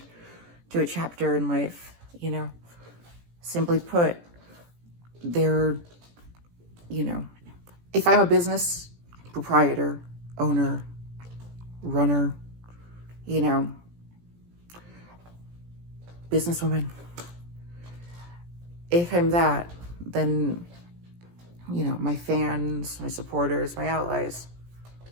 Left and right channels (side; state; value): left; late; 17 ms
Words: to a chapter in life, Simply put, they're, if I'm a business proprietor, owner, runner, you know, businesswoman, if I'm that, then, my fans, my supporters, my allies,